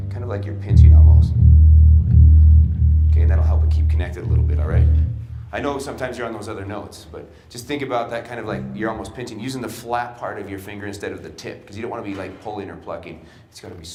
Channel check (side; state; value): both; identical; correlation 1.00